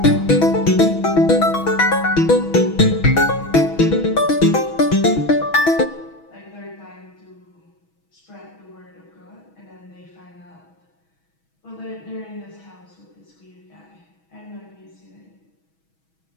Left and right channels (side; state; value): right; late; 6.2 ms